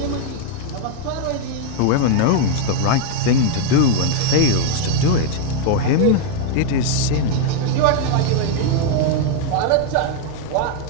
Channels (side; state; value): both; different; correlation 0.00